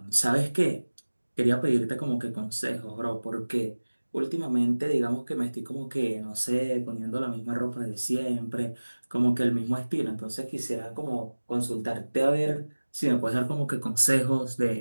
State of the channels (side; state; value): both; inverted; correlation -1.00